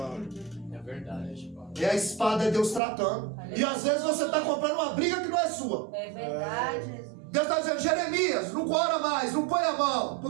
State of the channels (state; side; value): drops out; left; at 2.8 s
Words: verdade. É a espada, é Deus tratando. E às vezes você está comprando uma briga que não é sua. É verdade, Jesus. Deus está dizendo: Jeremias, não ora mais, não põe a mão,